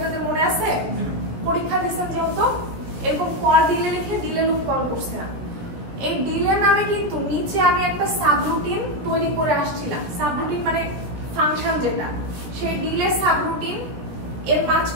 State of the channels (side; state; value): left; late; 17 ms